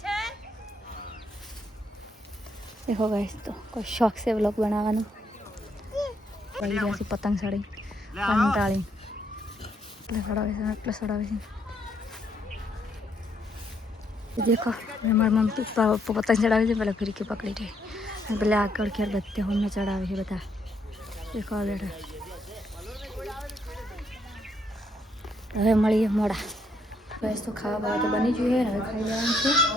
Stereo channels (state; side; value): normal; both; correlation 0.73